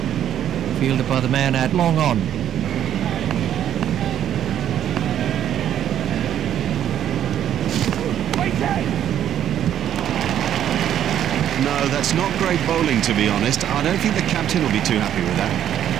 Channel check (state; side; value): quieter; left; 10.5 dB